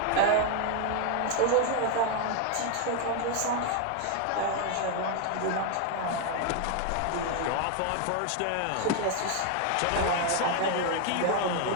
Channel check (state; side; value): different; both; correlation 0.00